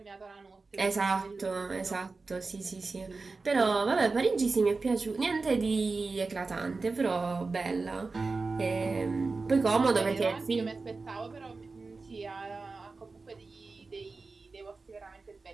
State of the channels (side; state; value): left; quieter; 4.0 dB